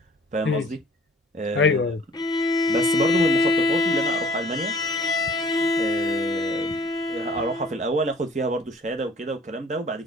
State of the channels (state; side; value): normal; both; correlation 0.53